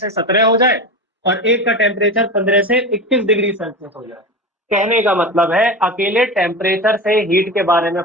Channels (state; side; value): normal; both; correlation 0.25